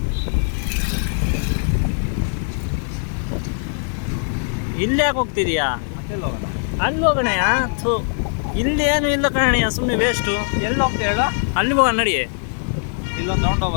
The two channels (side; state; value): right; silent; digital silence